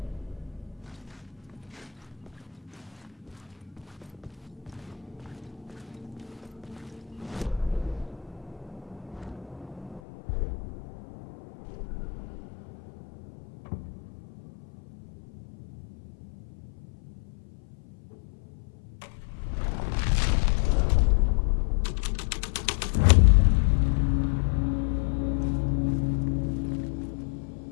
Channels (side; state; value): right; drops out; at 10.0 s